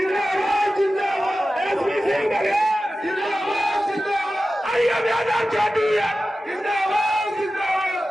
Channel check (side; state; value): both; normal; correlation 0.94